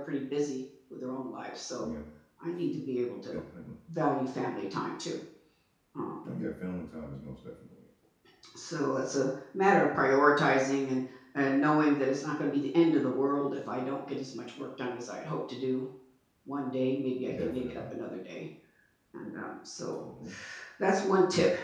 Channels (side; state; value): both; identical; correlation 1.00